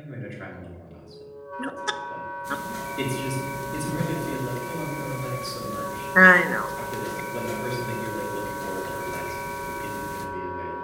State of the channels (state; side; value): identical; both; correlation 1.00